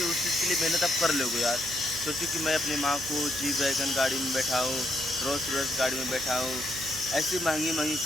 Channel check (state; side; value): noise; right; hum, 15 dB below the sound